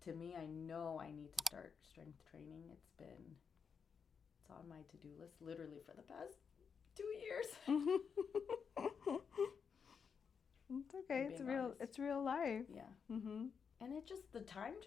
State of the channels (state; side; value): quieter; right; 5.7 dB